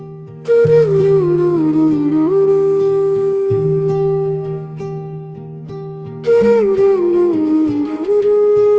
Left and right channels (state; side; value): identical; both; correlation 1.00